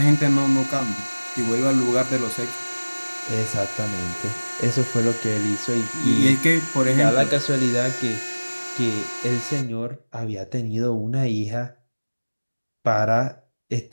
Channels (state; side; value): inverted; both; correlation -1.00